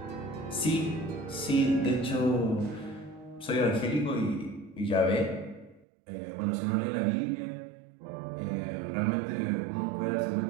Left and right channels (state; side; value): drops out; left; at 5.9 s